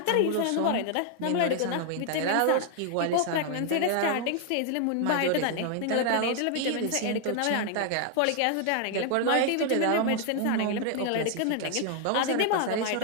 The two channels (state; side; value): different; both; correlation 0.00